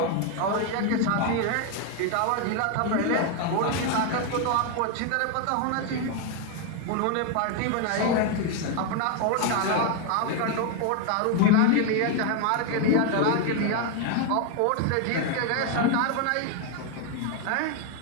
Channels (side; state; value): both; different; correlation 0.01